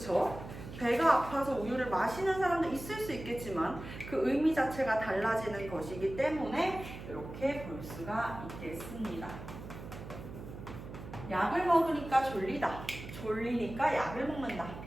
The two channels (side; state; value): right; noise; hum, 12 dB below the sound